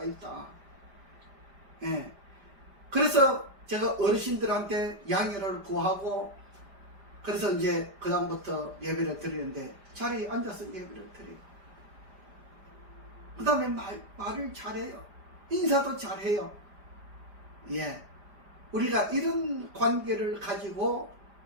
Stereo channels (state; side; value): late; left; 5.0 ms